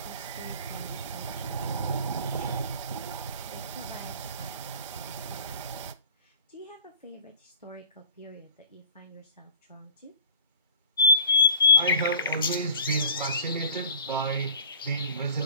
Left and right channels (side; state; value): both; inverted; correlation -0.45